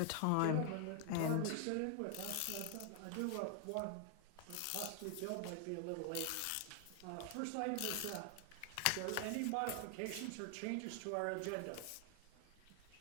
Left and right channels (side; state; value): both; different; correlation 0.00